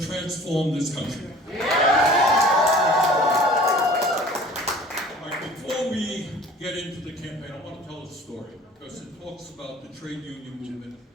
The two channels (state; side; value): normal; both; correlation 0.47